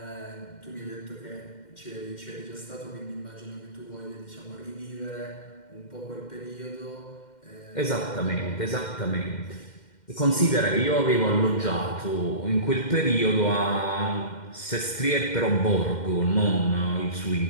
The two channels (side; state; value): right; late; 2.1 ms